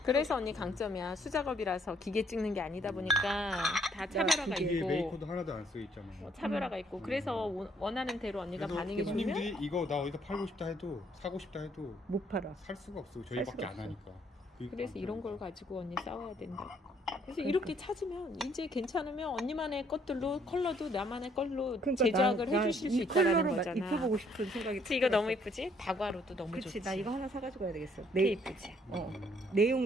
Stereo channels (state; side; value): normal; both; correlation 0.66